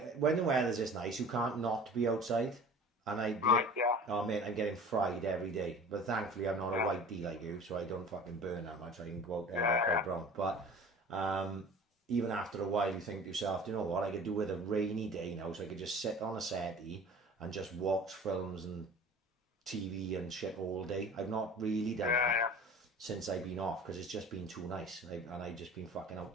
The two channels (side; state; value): both; normal; correlation 0.42